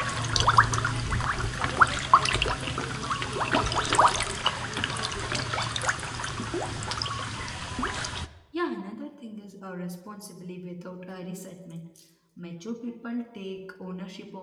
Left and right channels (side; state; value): both; identical; correlation 1.00